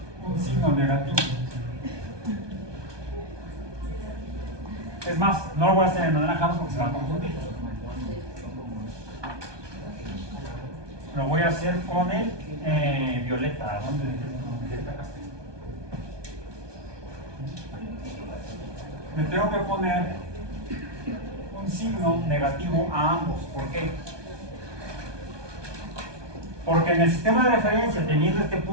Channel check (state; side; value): late; left; 1.2 ms